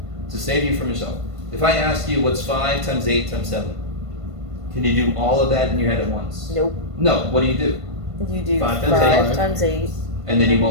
to save you from yourself, if I ask you what's 5 times 8 times 7, can you do all of that in your head at once? Nope. No. What do? You do 5 5 times times 8. And then you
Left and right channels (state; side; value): late; left; 1.5 ms